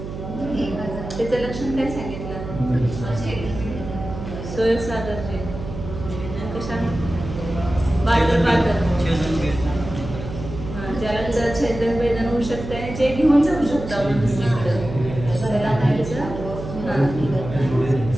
त्याचं लक्षण काय सांगितलं? सोय सागरचे कशा बादर बादर ज्याला छेदन वेदन होऊ शकते जे घेऊन जाऊ शकतो आपण दुसरीकडे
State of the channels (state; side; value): noise; right; hum, 9 dB below the sound